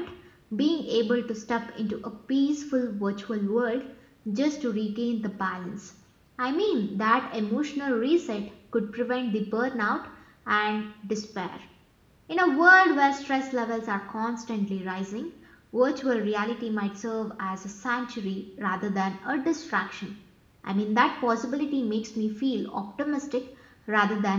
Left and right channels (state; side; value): identical; both; correlation 1.00